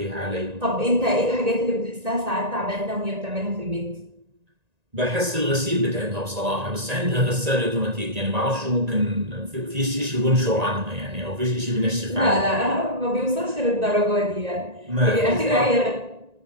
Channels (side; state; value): left; late; 1.9 ms